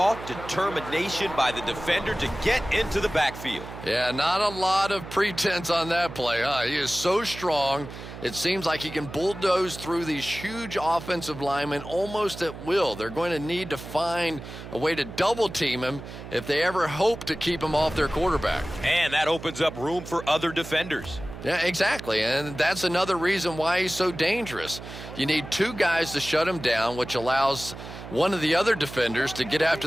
determination by the defender to get into the backfield. Yeah, not a lot of pretense on that play, huh? He is so strong. It seems like he can bulldoze through these huge offensive linemen almost at will. They're going to need to find a way to double team him if they ever hope to keep him off their quarterback. And that opens up room for other defenders. Yeah, exactly, and that's another reason why he's so dangerous. You need two guys to shut him down, which allows one of the other defenders to get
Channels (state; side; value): noise; right; hum, 12 dB below the sound